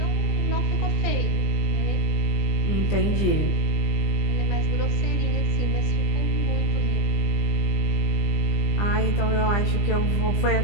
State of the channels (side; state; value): right; late; 20 ms